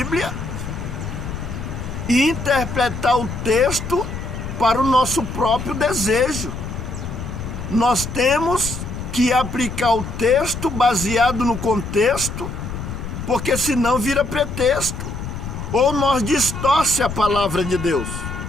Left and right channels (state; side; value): noise; left; rumble, 7 dB below the sound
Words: e interpretar o texto para o nosso próprio desejo. Nós temos que aplicar o texto baseado no contexto, porque senão vira pretexto, ou nós distorce a palavra de Deus.